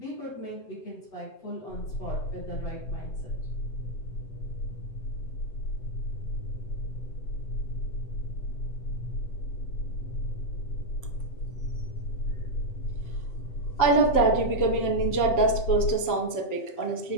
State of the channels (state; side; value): late; right; 7.8 ms